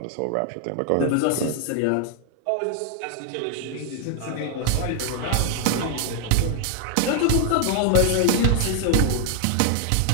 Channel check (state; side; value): different; both; correlation 0.00